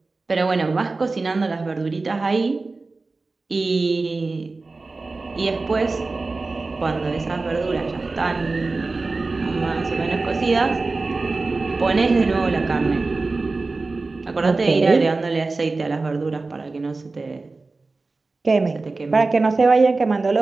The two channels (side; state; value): left; quieter; 3.6 dB